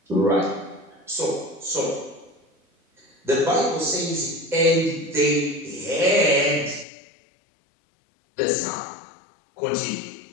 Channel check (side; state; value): right; drops out; at 6.9 s